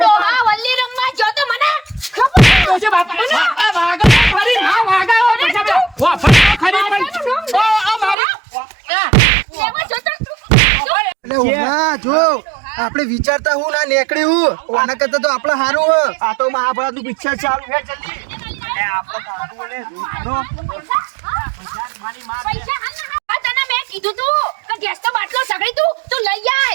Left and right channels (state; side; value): drops out; left; at 8.2 s